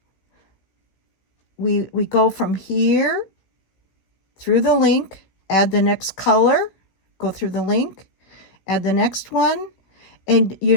We go from here through the link, add the next color, go through the link, add the next one, and you're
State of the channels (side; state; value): right; late; 16 ms